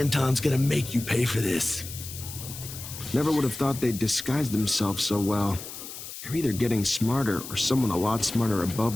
gonna make you pay for this. Never would have thought they'd disguise themselves so well. They're either getting smarter, or someone a lot smarter above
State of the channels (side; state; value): left; noise; hiss, 11 dB below the sound